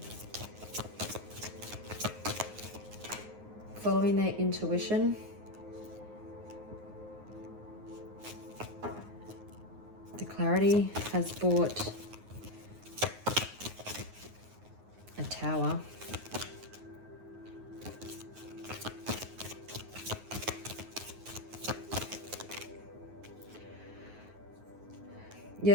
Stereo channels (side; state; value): left; late; 9.5 ms